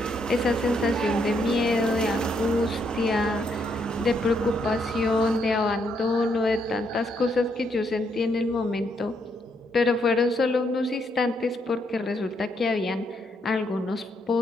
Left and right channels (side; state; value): both; normal; correlation 0.75